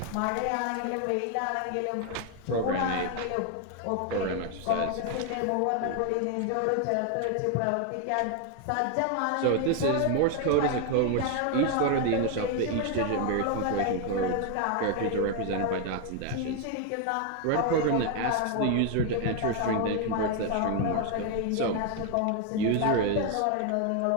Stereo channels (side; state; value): both; different; correlation 0.01